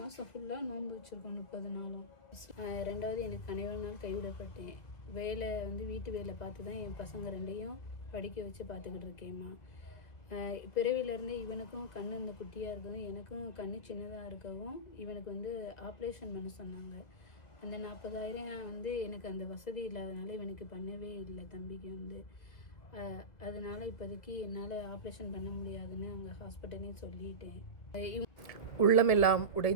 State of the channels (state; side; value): late; right; 1.9 ms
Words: ஃபுல்லாக நோன்பு வச்சுருக்கோம் 30 நாளும். 2வது எனக்கு கணவர் நாள் கைவிடப்பட்டேன். வேலை வீட்டு வேலை பார்த்து தான் என் பசங்க 2ஐயும் படிக்க வச்சு பார்த்துக்கிட்டு இருக்கேம்மா. பிறவிலேருந்தே இவனுக்கும் கண் இந்த குட்டியாக இருக்கவும் எனக்கும் கண் சின்னதாக இருக்கவும் இவனுக்கு ஆப்ரேஷன் பண்ண சொன்னாங்க. அந்த 40,000 எனக்கு அந்த வசதி இல்லாதனால இவனுக்கு பண்ணவே இல்லை. தம்பிக்கு அதனால் இப்போதைக்கு என்னால் ஆப்ரேஷன் பண்ண முடியாதுன்னு அங்கே ஹாஸ்பிட்டலே சொல்லிட்டேன். உள்ளமெல்லாம்